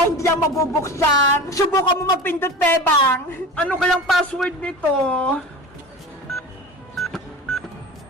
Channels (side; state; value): both; normal; correlation 0.33